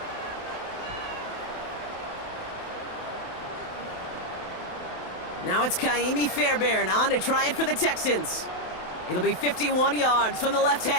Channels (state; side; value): late; right; 27 ms